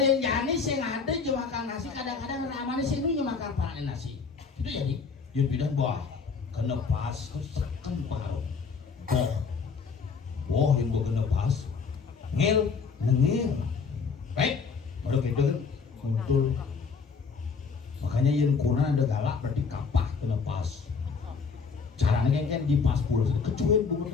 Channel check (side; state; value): right; quieter; 5.2 dB